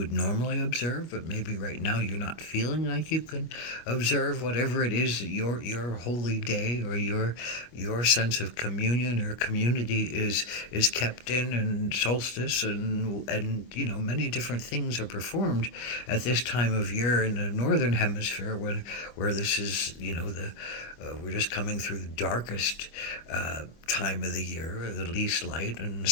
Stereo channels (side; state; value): right; late; 25 ms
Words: normally observe, but maybe right now you're not feeling like you can observe whatever it is that your holy day or your sense of communion or community is kept in, and solstice and many different things are performed at this time of year in the northern hemisphere when where this is the we're just coming through the darkest time of the year, the least light, in the